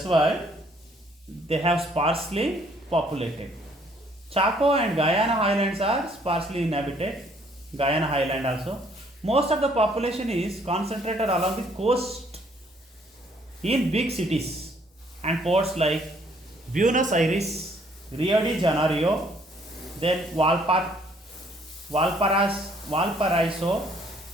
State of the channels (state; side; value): normal; both; correlation 0.64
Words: why they have sparsely populated. Chaco and Guyana Highlands are sparsely inhabited. Guyana Highland also. Most of the population is concentrated along the coast in big cities and ports like Buenos Aires, Rio de Janeiro, then Valparaiso,